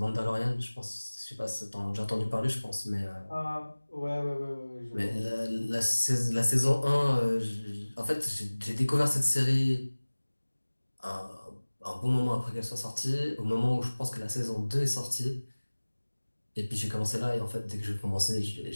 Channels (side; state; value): both; inverted; correlation -1.00